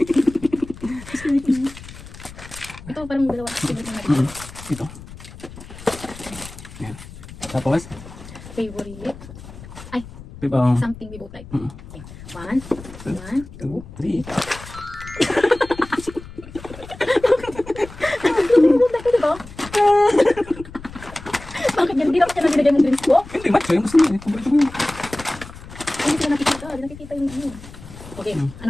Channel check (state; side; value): noise; left; rumble, 16 dB below the sound